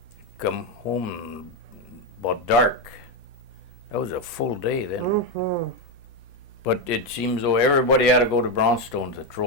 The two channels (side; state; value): both; normal; correlation 0.09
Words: come home about dark. That was a full day then. Mm-hmm. But it seems though everybody had to go to Brownstone to